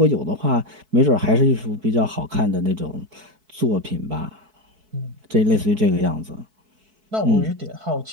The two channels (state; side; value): late; left; 4.6 ms